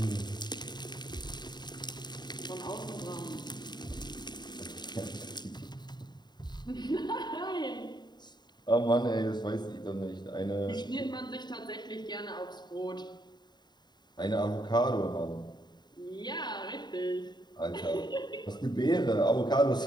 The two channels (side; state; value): right; late; 0.21 ms